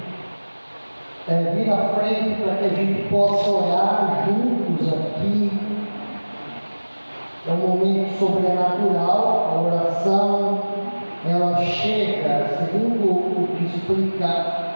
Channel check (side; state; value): both; inverted; correlation -1.00